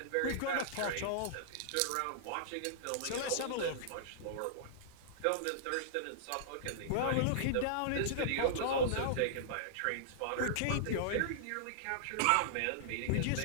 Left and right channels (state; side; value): different; both; correlation -0.02